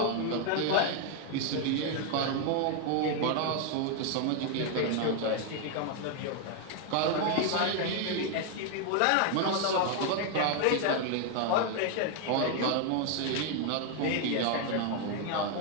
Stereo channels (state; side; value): different; both; correlation 0.01